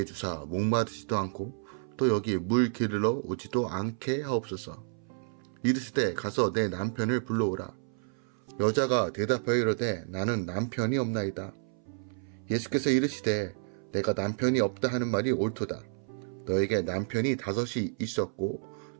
주사 목마르지도 않고 또 여기 물 기르러 오지도 않게 하옵소서. 이르시되 가서 내 남편을 불러오라. 여자가 대답하여 이르되 나는 남편이 없나이다. 예수께서 이르시되 내가 남편이 없다 하는 말이 옳도다. 너에게 남편이 5이 있었고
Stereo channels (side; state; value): left; silent; 58 dB below the other